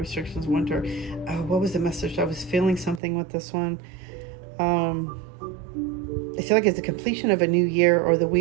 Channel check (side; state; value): left; drops out; at 3.0 s